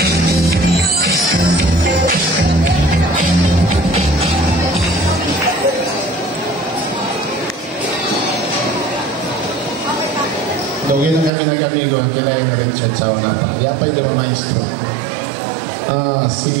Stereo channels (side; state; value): left; drops out; at 11.3 s